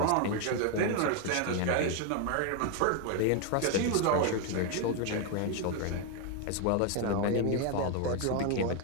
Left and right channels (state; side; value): different; both; correlation 0.01